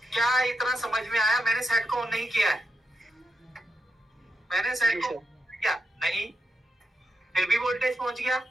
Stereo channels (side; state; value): both; normal; correlation 0.86